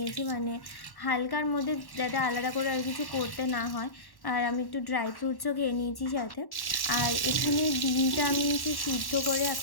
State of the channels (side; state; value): right; late; 1.1 ms